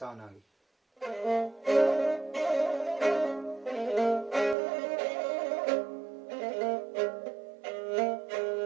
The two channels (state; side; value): drops out; left; at 4.5 s